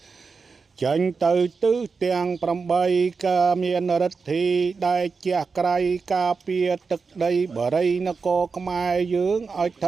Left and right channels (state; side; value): quieter; left; 4.8 dB